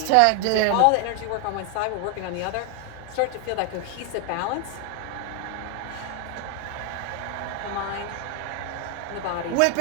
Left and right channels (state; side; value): different; both; correlation 0.00